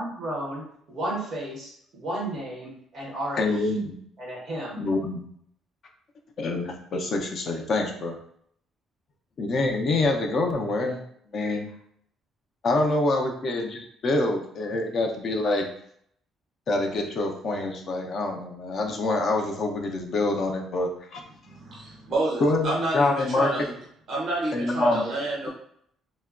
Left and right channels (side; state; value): both; normal; correlation 0.72